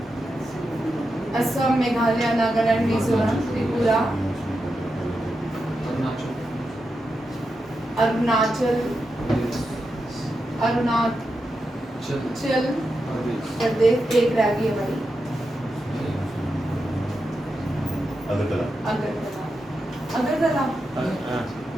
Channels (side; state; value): both; normal; correlation 0.88